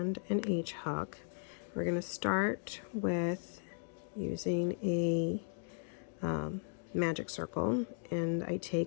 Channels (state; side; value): silent; right; digital silence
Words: an H hook. We're going to start with using a magic circle, and I